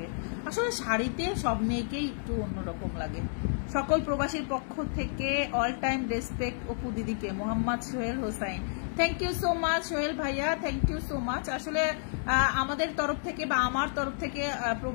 আসলে শাড়িতে সব মেয়েকেই একটু অন্যরকম লাগে। সকল প্রবাসীর পক্ষ থেকে অল টাইম রেসপেক্ট অপু দিদিকে। Mohammad Sohel Hossain, thank you so much Sohel ভাইয়া, থ্যাংক ইউ সো মাচ। আসলে আমাদের তরফ থেকে বা আমার তরফ থেকে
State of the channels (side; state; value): right; silent; digital silence